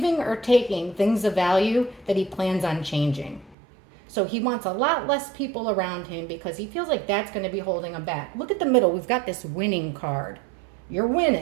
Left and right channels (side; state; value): left; drops out; at 3.6 s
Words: or taking things of value that he plans on changing. So he wants a lot less people around him because he feels like that's going to be holding him back. Look at the middle. We've got this winning card. You're